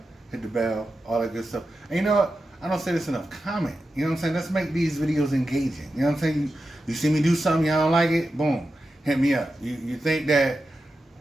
hit the bell, all that good stuff. And you know what? I don't say this enough. Comment. You know what I'm saying? Let's make these videos engaging. You know what I'm saying? You see me do something, y'all don't like it? Boom. Hit me up. You think that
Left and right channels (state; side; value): normal; both; correlation 0.91